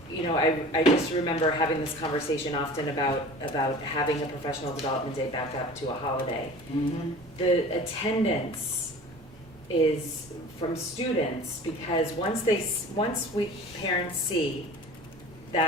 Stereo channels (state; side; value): normal; both; correlation 0.41